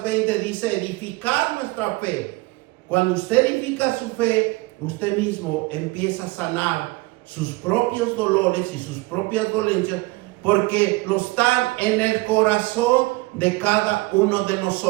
20 dice edificar nuestra fe. Cuando usted edifica su fe, usted mismo empieza a sanar sus propios dolores y sus propias dolencias, porque lo están en el corazón de cada uno de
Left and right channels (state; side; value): quieter; left; 22.7 dB